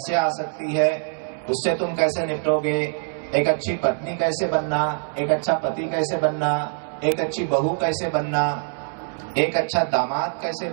आ सकती है, उससे तुम कैसे निपटोगे, एक अच्छी पत्नी कैसे बनना, एक अच्छा पति कैसे बनना, एक अच्छी बहू कैसे बनना, एक अच्छा दामाद कैसे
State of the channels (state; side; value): silent; left; 62 dB below the other